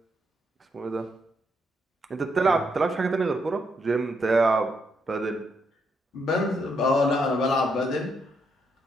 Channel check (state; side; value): normal; both; correlation 0.77